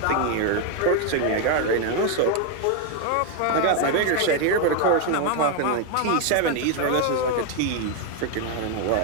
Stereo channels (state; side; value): different; both; correlation 0.01